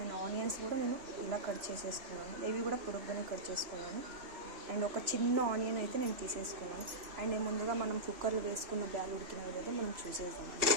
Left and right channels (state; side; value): late; left; 3.1 ms